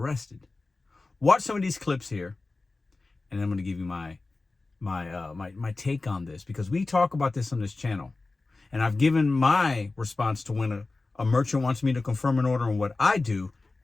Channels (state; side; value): quieter; right; 3.4 dB